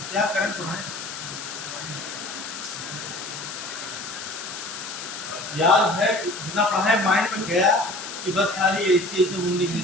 क्या करें पढ़ाएं। याद है जितना पढ़ाए माइंड में गया कि बस खाली ऐसे मुंडी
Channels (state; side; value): noise; left; hiss, 9 dB below the sound